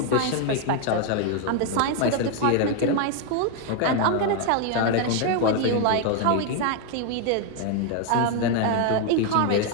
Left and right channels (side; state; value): both; different; correlation 0.01